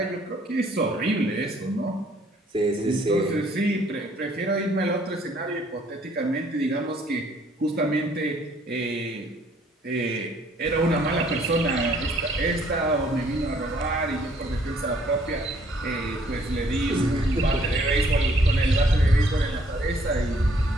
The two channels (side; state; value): both; normal; correlation 0.62